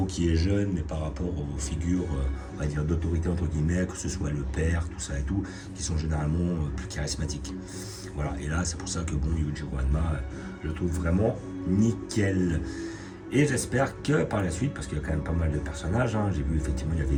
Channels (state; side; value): identical; both; correlation 1.00